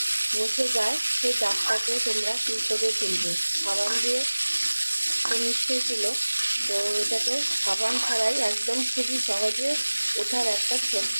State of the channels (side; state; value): both; inverted; correlation -1.00